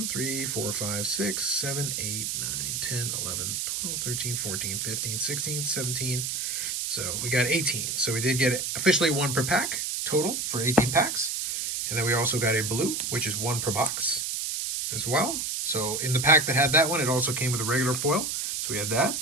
3, 4, 5, 6, 7, 8, 9, 10, 11, 12, 13, 14, 15, 16, 17. So we got 18. So we did get officially 1 per pack total for 18 packs. And then we also got a blue, which is 1 per box as well. So in the pack that had that one, it also came with a regular foil. So we had that.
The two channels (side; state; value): right; noise; hiss, 1 dB below the sound